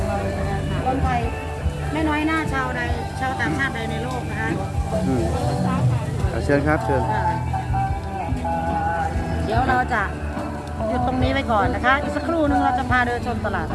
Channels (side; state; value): both; identical; correlation 1.00